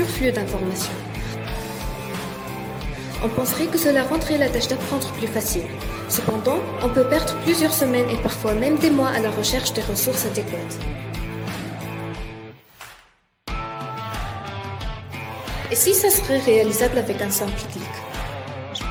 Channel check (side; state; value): both; identical; correlation 1.00